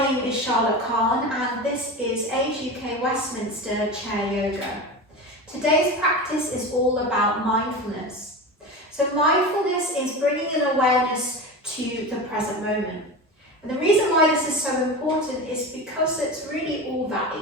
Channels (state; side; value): normal; both; correlation 0.27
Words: name is Charlotte Kahn and this is Age UK Westminster Chair Yoga. Today's practice is all about mindfulness. So mindfulness is bringing an awareness to the present moment. And the reason why this is so important is because it's really all that